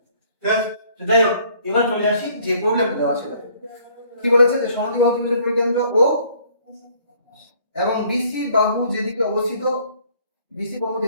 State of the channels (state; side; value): inverted; both; correlation -0.60